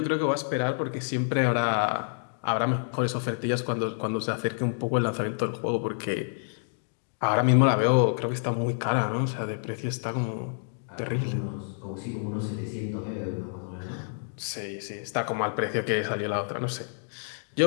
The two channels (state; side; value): silent; right; digital silence